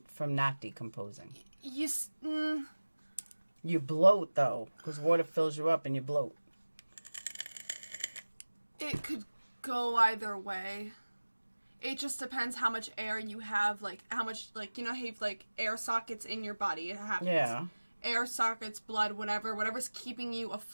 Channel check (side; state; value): both; inverted; correlation -1.00